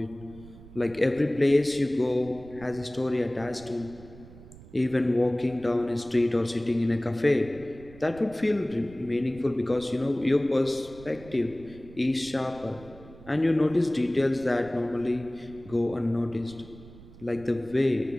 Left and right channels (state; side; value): noise; right; rumble, 19 dB below the sound